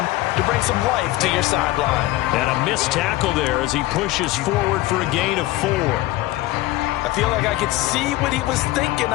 bring some life to your sideline. And a missed tackle there as he pushes forward for a gain of 4. I feel like I could see what he was thinking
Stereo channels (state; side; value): quieter; right; 17.2 dB